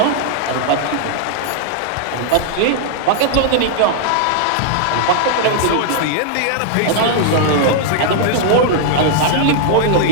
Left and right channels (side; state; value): both; different; correlation -0.01